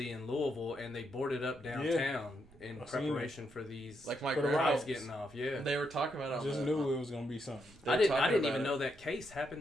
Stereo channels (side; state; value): right; noise; rumble, 25 dB below the sound